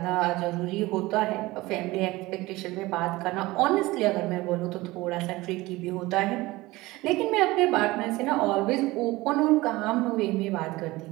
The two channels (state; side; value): quieter; left; 20.0 dB